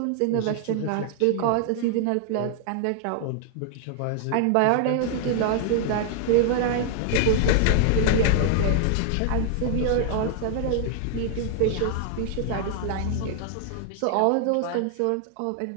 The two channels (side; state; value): both; different; correlation 0.00